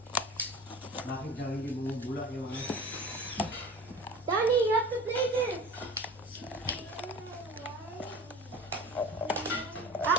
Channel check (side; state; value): both; normal; correlation 0.38